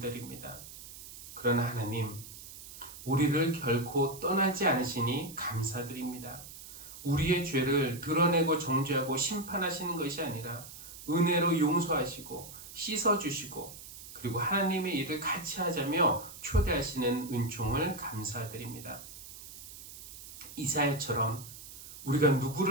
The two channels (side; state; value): right; noise; hiss, 14 dB below the sound